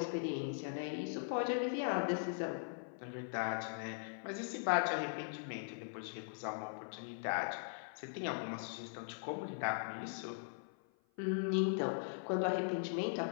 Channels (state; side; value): silent; right; 51 dB below the other